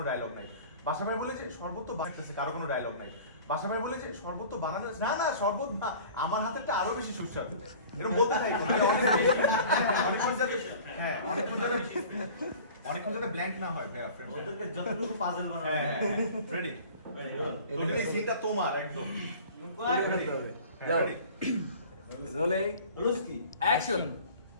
ডায়লগ নাই। বাসা ভাই বলেছে শরবত তো বানাতেছে, কারো কোনো ডায়লগ নাই। বাসা ভাই বলেছে শরবত তো বানানো না না শরবত না, আমার হাতেরটা আরো বেশি সুস্বাদু। এরকম বলতে থাকো। হ্যাঁ অনেকক্ষণ যাতে ব্ল্যাঙ্ক না হয় ভাইয়া ফ্রেন্ড। ওদেরকে যতটুকু পাজল বানানো হ্যাঁ রেডি। তুমি এই সিনটা তোমার একদম। যাও রোলিং রুস্কি অ্যাকশন।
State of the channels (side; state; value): both; inverted; correlation -0.44